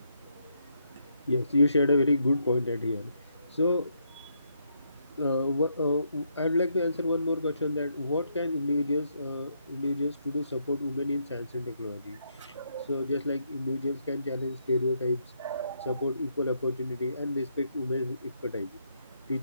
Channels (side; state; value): both; inverted; correlation -0.76